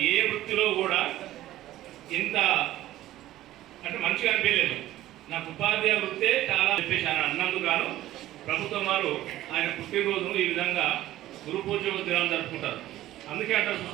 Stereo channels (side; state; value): left; quieter; 14.6 dB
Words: ఏ వృత్తిలో కూడా ఇంత అంటే మంచిగా అనిపించలేదు. నాకు ఉపాధ్యాయ వృత్తే చాలా చెప్పేశాను అన్నందుకు గాను ప్రభుత్వం వారు ఆయన పుట్టినరోజును ఈ విధంగా గురు పూజ దినాలు జరుపుకుంటారు. అందుకే అంటారు